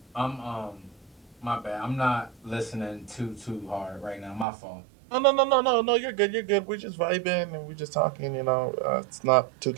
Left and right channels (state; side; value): drops out; left; at 4.5 s